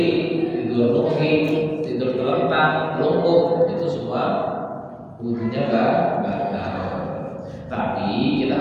tidur nungging, tidur terlentang, lumpuh itu semua wudunya batal. Tapi kita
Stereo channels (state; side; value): identical; both; correlation 1.00